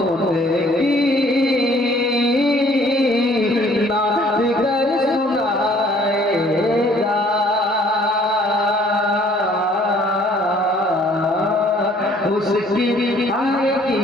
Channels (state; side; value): normal; both; correlation 0.59